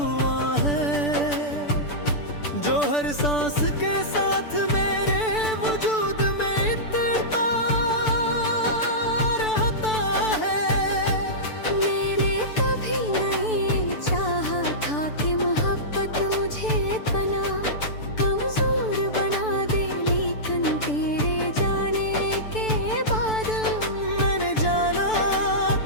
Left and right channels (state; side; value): late; right; 6.8 ms